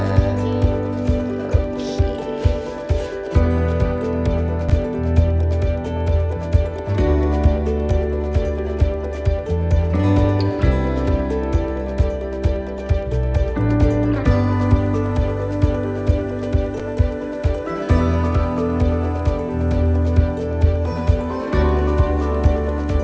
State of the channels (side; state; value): both; identical; correlation 1.00